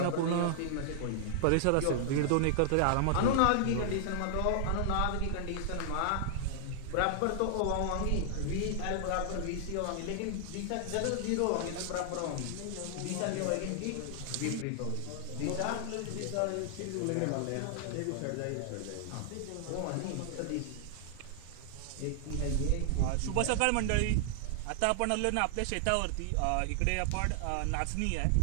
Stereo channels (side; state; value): both; different; correlation 0.00